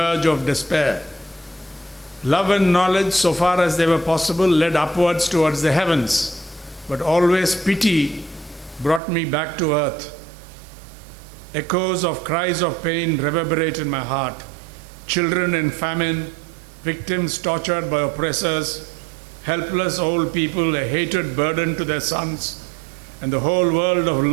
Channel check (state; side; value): drops out; left; at 9.0 s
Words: of despair. Love and knowledge, so far as they were possible, led upwards towards the heavens, but always pity brought me back to earth. Echoes of cries of pain reverberate in my heart. Children in famine, victims tortured by oppressors, helpless old people, a hated burden to their sons, and the whole world of